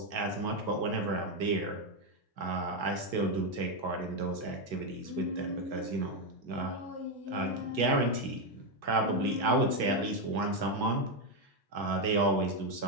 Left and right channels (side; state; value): left; late; 1.5 ms